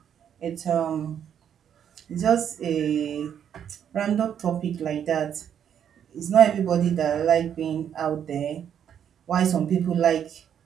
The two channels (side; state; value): left; quieter; 8.9 dB